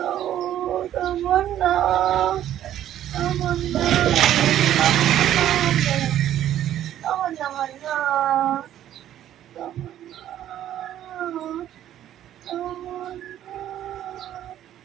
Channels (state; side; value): quieter; left; 11.7 dB